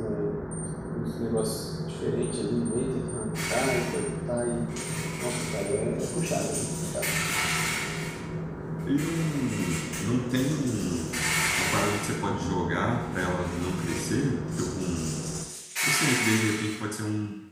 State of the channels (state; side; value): identical; both; correlation 1.00